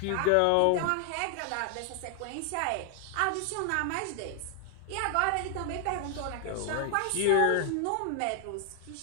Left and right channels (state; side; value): different; both; correlation 0.00